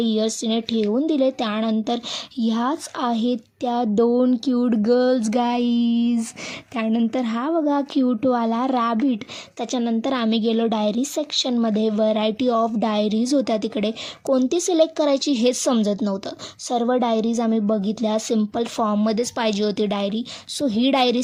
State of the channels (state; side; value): identical; both; correlation 1.00